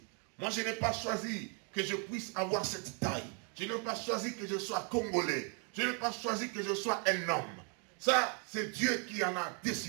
Moi, je n'ai pas choisi que je puisse avoir cette taille. Je n'ai pas choisi que je sois congolais. Je n'ai pas choisi que je sois un homme. Ça, c'est Dieu qui en a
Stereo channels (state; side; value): quieter; left; 38.9 dB